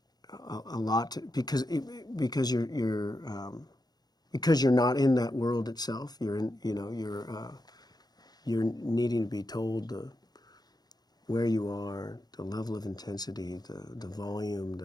a lot because you're not in that world itself. You're needing to be told where you are, the level of intensity, the volume,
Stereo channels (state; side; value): late; right; 0.19 ms